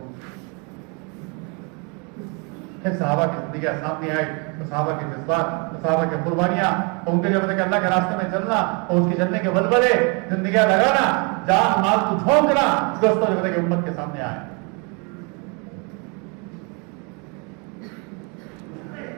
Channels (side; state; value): left; quieter; 33.1 dB